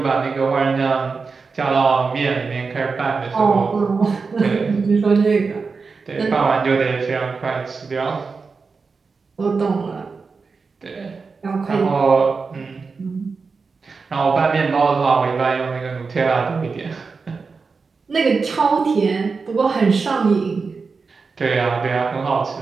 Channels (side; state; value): left; quieter; 4.7 dB